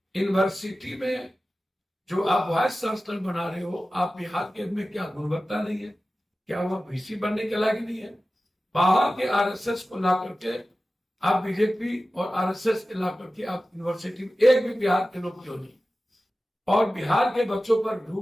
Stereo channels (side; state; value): both; normal; correlation 0.95